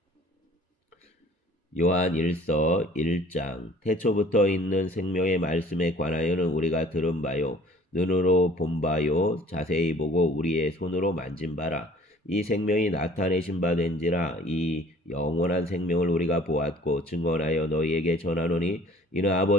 요한 1서 1장. 태초부터 있는 생명의 말씀에 관하여는 우리가 들은 바요 눈으로 본 바요 자세히 보고 우리의 손으로 만진 바라. 이 생명이 나타내신 바 된지라. 이 영원한 생명을 우리가 보았고 증언하여 너희에게 전하노니 이는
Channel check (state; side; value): normal; both; correlation 0.51